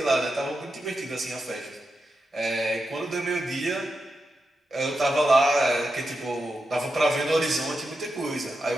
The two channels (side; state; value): both; normal; correlation 0.88